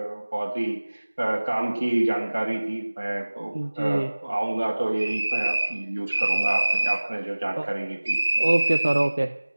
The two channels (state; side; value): inverted; both; correlation -1.00